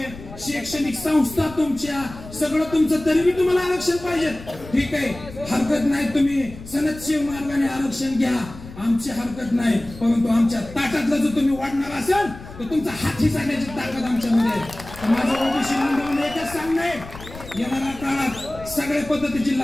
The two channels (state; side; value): noise; left; rumble, 15 dB below the sound